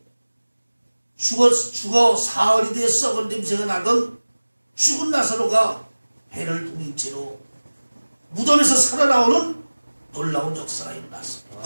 죽어 사흘이 되어 썩은 냄새가 나던 죽은 나사로가 배를 동인 채로 무덤에서 살아나오는 놀라운 역사가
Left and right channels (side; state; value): both; inverted; correlation -1.00